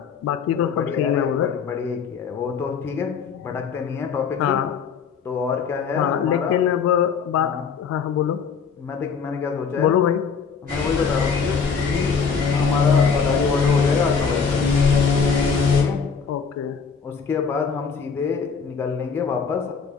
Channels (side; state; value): right; quieter; 6.0 dB